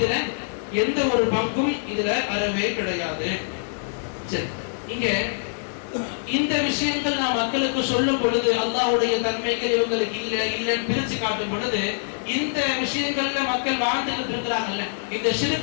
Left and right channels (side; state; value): right; silent; digital silence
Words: எந்த ஒரு பங்கும் இதுல அறவே கிடையாது. சரி, இங்க இந்த விஷயங்கள் நான் மக்களுக்கு சொல்லும் பொழுது அல்லாஹ்வுடைய தன்மைகள் இவங்களுக்கு இல்லைன்னு பிரிச்சு காட்டும் பொழுது இந்த விஷயங்கள்ல மக்கள் வாழ்ந்துட்டு இருக்கிறாங்கல்ல, இந்த